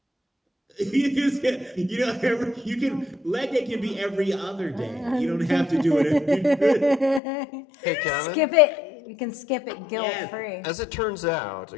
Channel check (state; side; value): drops out; right; at 7.2 s